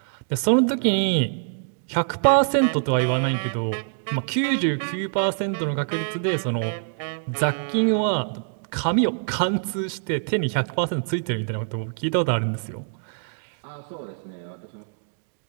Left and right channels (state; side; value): silent; left; digital silence